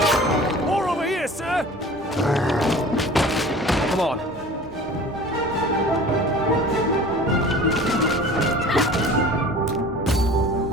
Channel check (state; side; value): normal; both; correlation 0.43